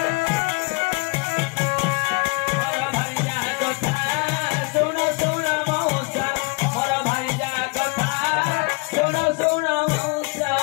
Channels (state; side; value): quieter; right; 29.6 dB